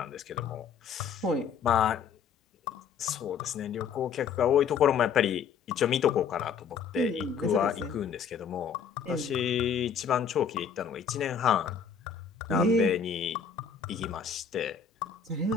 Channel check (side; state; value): right; quieter; 6.7 dB